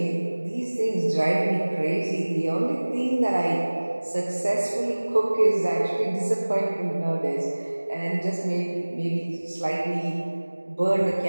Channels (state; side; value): inverted; both; correlation -1.00